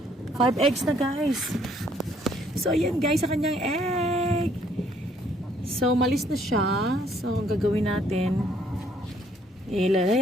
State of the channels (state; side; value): normal; both; correlation 0.64